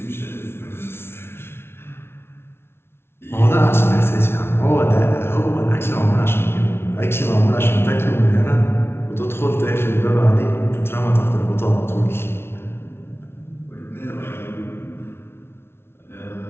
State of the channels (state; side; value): late; right; 0.12 ms